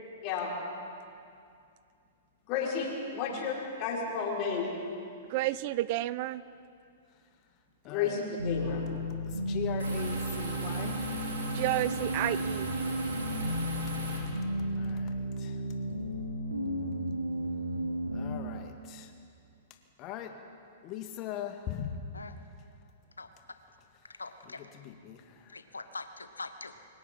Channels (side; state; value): both; inverted; correlation -0.42